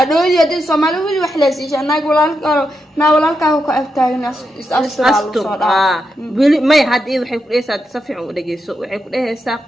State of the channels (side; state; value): both; normal; correlation 0.85